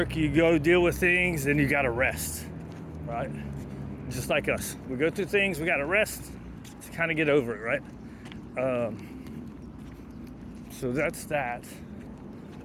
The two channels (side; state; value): both; identical; correlation 1.00